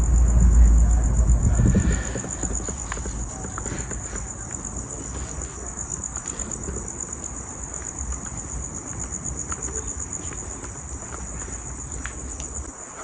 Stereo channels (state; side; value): identical; both; correlation 1.00